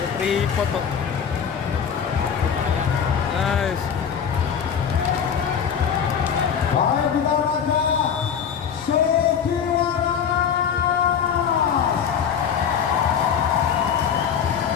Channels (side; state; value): right; quieter; 7.6 dB